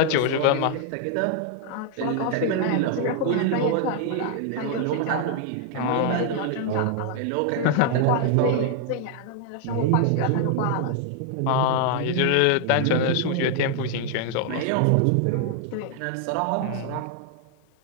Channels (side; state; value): both; different; correlation 0.00